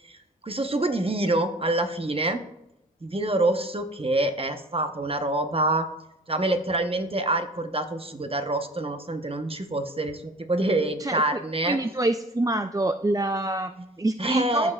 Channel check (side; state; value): both; normal; correlation 0.47